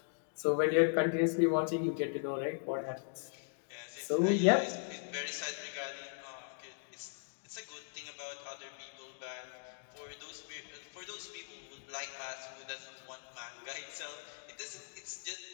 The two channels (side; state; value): right; silent; digital silence